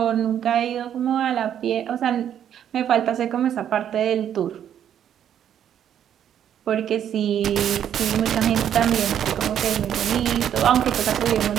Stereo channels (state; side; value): quieter; left; 9.7 dB